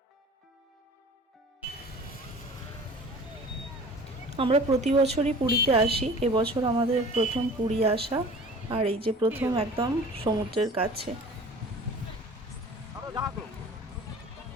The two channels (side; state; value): both; normal; correlation 0.43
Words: আমরা প্রতি বছরই পুরীতে আসি, এবছর আমাদের প্রথম পুরী আসা। আর এই যে প্রথম একদম সমুদ্রের কাছে।